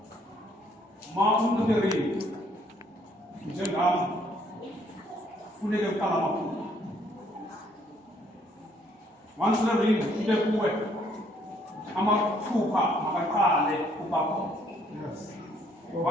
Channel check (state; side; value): normal; both; correlation 0.66